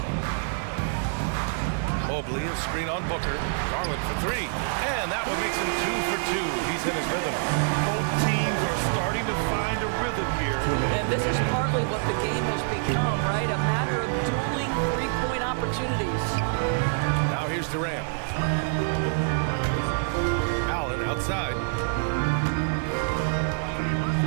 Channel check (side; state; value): left; silent; digital silence